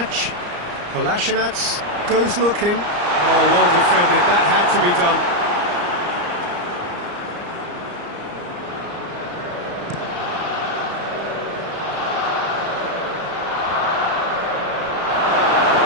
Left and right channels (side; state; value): left; late; 34 ms